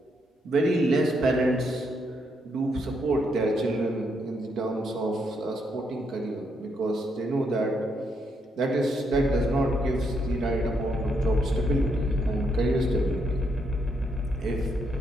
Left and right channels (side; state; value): both; normal; correlation 0.77